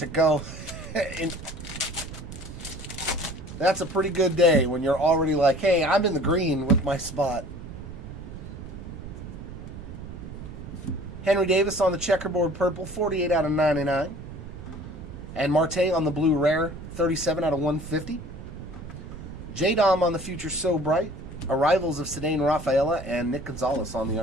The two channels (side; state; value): right; noise; rumble, 11 dB below the sound